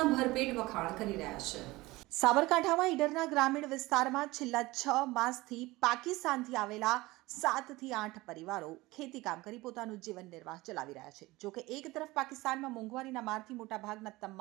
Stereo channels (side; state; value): left; quieter; 20.2 dB